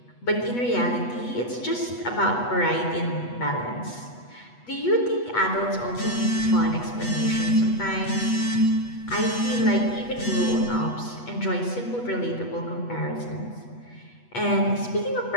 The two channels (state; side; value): late; right; 8.2 ms